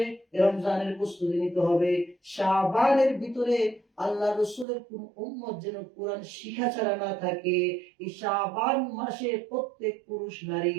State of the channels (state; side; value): drops out; left; at 4.7 s